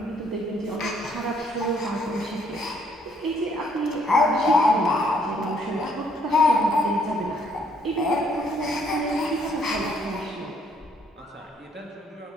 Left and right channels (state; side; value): normal; both; correlation 0.67